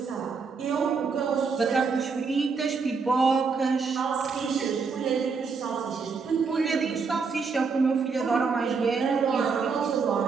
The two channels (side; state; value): left; quieter; 5.1 dB